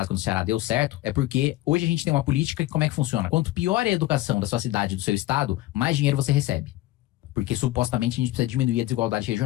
no Ceará deu certo é porque hoje a gente tem uma política que como é que funciona? Quanto pior é a educação da sua cidade, do seu estado, mais dinheiro você recebe. Porque supostamente a gente precisa diminuir a desigualdade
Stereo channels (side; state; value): right; quieter; 16.6 dB